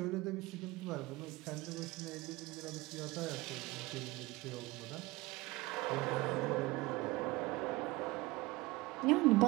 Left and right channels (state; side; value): quieter; left; 21.0 dB